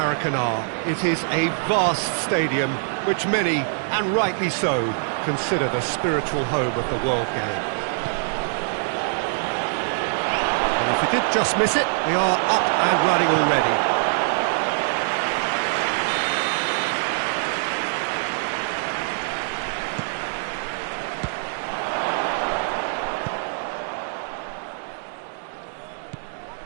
It is a vast stadium, which many, and rightly so, consider the spiritual home of the world game. And if you did just miss it, we are up and running already.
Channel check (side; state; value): left; silent; 63 dB below the other